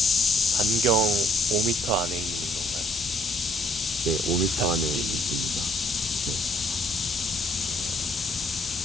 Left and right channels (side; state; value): both; normal; correlation 0.64